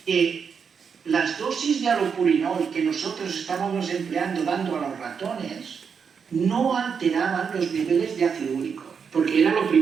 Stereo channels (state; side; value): quieter; left; 6.4 dB